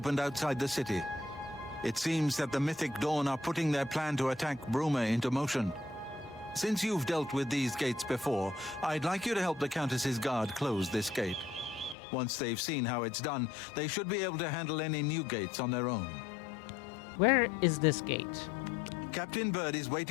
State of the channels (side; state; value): right; drops out; at 12.0 s